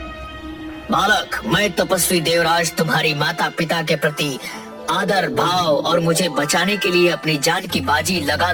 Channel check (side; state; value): both; identical; correlation 1.00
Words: बालक, मैं तपस्वी देवराज तुम्हारी माता पिता के प्रति आदर भाव और मुझे बचाने के लिए अपनी जान की बाजी लगा